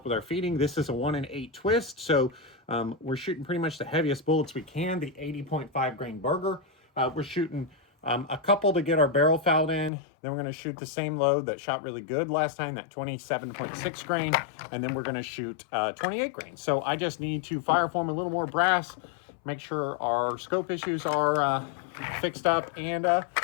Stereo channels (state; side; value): drops out; right; at 9.9 s